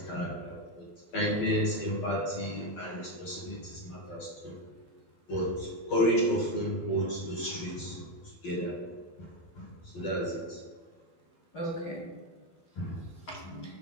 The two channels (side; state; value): right; late; 12 ms